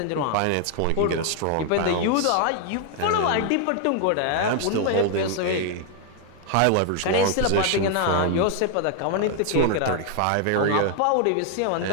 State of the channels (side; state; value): both; different; correlation 0.00